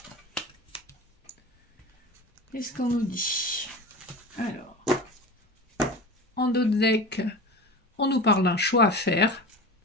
qu'est-ce qu'on nous dit? Alors, en dos de deck, on nous parle d'un choix à faire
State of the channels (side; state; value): both; normal; correlation 0.32